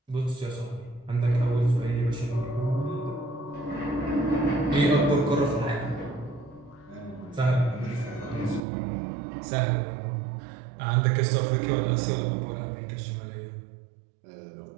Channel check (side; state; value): left; drops out; at 8.6 s